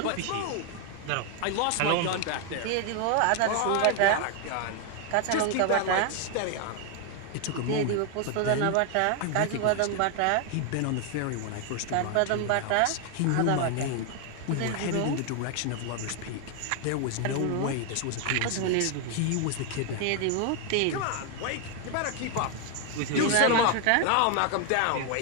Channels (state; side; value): different; both; correlation 0.01